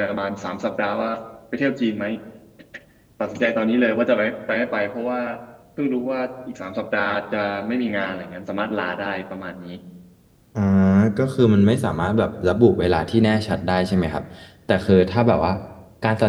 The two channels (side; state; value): both; identical; correlation 1.00